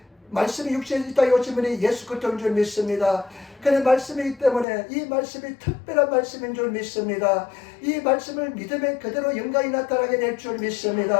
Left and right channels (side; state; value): right; drops out; at 4.7 s